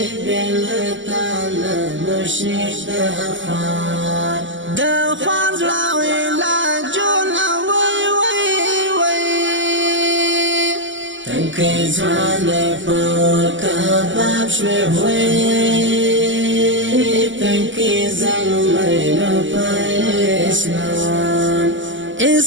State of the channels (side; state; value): left; late; 0.55 ms